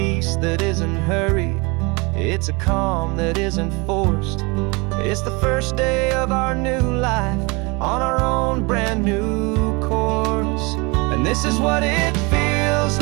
that isn't hurried, it's a calm that isn't forced. It's the first day of our new life on our own brand new course. And this is what it feels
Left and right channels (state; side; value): quieter; left; 27.7 dB